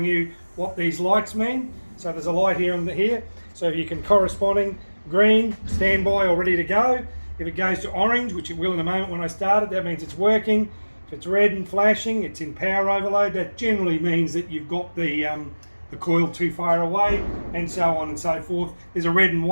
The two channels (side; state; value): both; inverted; correlation -1.00